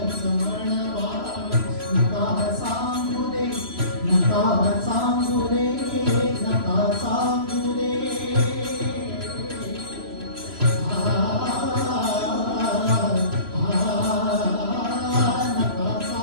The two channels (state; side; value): late; left; 3.0 ms